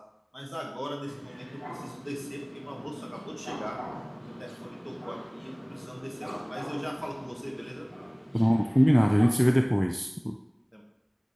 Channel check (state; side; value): identical; both; correlation 1.00